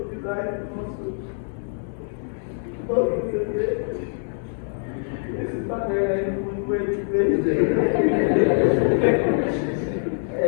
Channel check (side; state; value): right; silent; 63 dB below the other